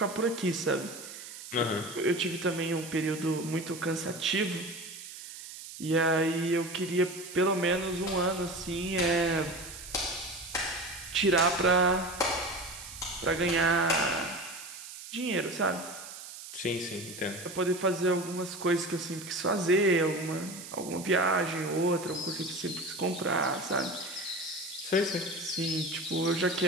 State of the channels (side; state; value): right; noise; hiss, 12 dB below the sound